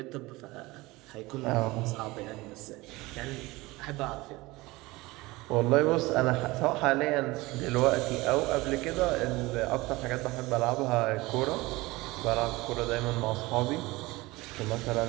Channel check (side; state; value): left; quieter; 21.1 dB